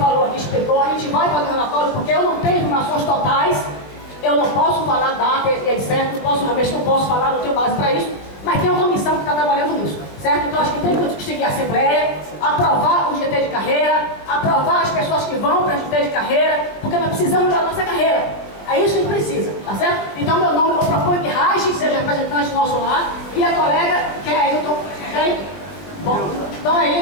aqui, explicou. A gente vai fazer um relatório, porque eu não tenho informações totais. Eu não posso falar data e etc. Não posso falar, não tenho base para isso. Mas tem uma comissão que está trabalhando nisso, certo? Então acho que tem que seguir a Assembleia, aprovar o GT de carreira, aprovar as pessoas que vão para o GT de carreira, porque nós precisamos da nossa carreira. É isso que a gente precisa, tá certo? Então meu nome, eu proponho que Raj seja representante nosso lá, e a colega, que é Ailton. Bom, então é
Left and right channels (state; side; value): late; right; 20 ms